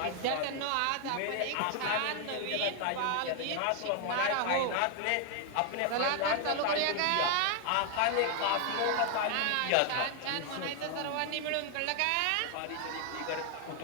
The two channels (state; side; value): different; both; correlation 0.00